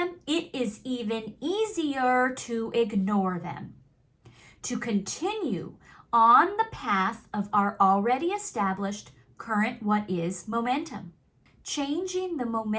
it is even easier to ignore them, to continue on the path of our already established current what is momentum. Changing the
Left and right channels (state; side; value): identical; both; correlation 1.00